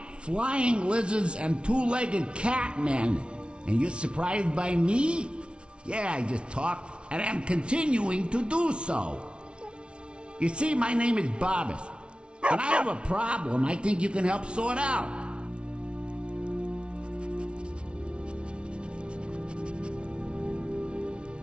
flying lizards and two-legged catmen. And you're surprised by me? Yeah, I just talked, and I'm continuing to do so. You see, my name is Barbas, and I have a problem I think you can help sort out.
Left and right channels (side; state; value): left; late; 0.058 ms